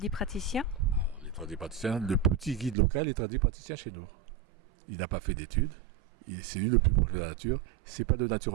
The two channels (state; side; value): drops out; left; at 2.8 s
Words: Les tradipraticiens, le petit guide local est tradipraticien chez nous. Il n'a pas fait d'études, c'est lui le plus proche de la nature. C'est pas de